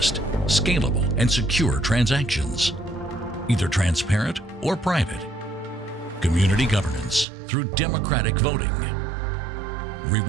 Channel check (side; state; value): left; drops out; at 7.2 s